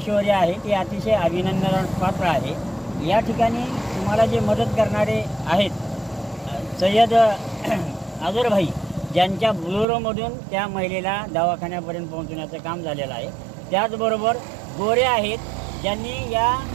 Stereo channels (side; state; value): left; drops out; at 9.9 s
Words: शौर्य आहे ते अतिशय अभिनंदनास पात्र आहे। या ठिकाणी तुम्हाला जे मदत करणारे आहेत सय्यद अझर भाई, ज्यांच्या बुलोरोमधून त्या महिलेला दवाखान्यापर्यंत पोहोचवण्याचं काम झालेलं आहे। त्याचबरोबर गोरे आहेत, ज्यांनी या